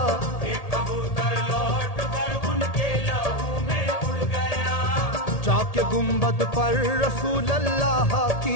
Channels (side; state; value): right; late; 1.8 ms